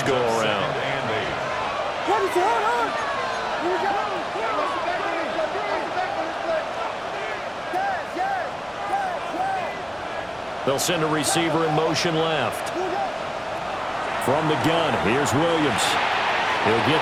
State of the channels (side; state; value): both; identical; correlation 1.00